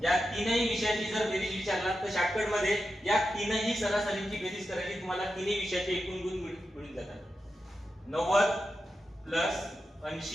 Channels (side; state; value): both; normal; correlation 0.89